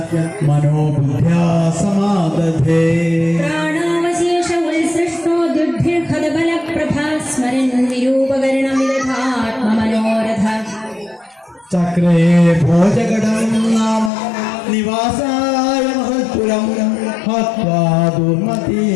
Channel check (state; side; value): drops out; right; at 14.1 s